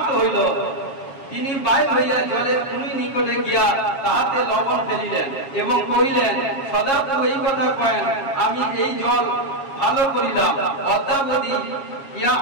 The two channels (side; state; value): right; late; 7.3 ms